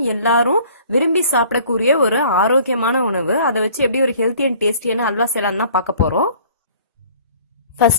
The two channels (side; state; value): both; inverted; correlation -0.52